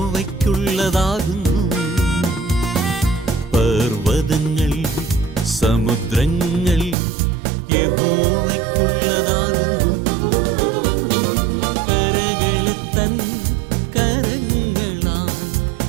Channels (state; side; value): drops out; left; at 7.0 s